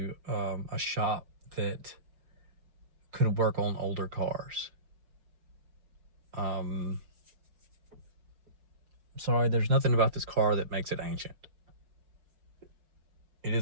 a shop that could work on older cars. Sorry, there's nothing about this car that makes it ancient. It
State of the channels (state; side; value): late; left; 4.9 ms